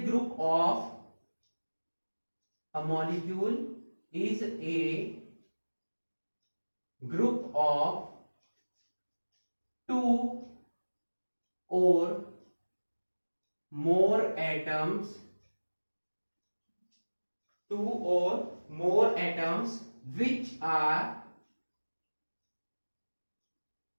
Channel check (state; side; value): inverted; both; correlation -1.00